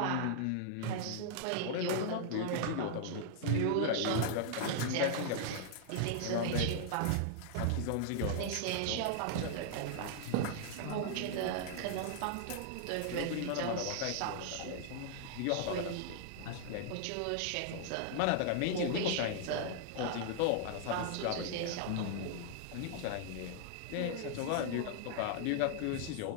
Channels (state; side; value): different; both; correlation -0.01